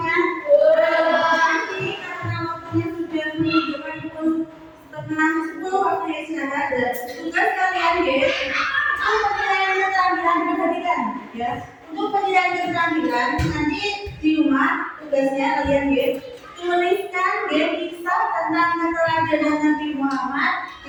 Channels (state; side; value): identical; both; correlation 1.00